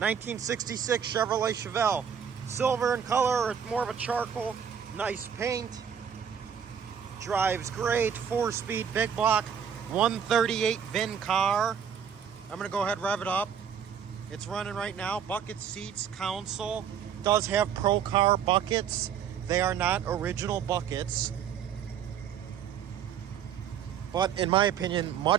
Chevrolet Chevelle. Silver in color, it's more of a charcoal. Nice paint. Drives great. 4-speed big block. 138 VIN car. I'm going to go ahead and rev it up. It's running right now. Bucket seats, console. Does have Pro Car buckets. They are not original buckets, but in my opinion,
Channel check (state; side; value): quieter; left; 8.1 dB